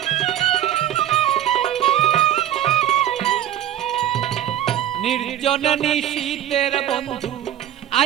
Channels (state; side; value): quieter; left; 11.5 dB